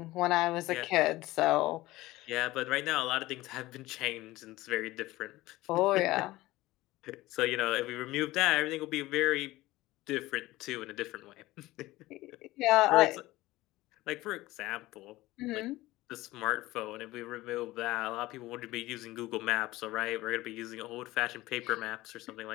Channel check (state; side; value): quieter; right; 18.2 dB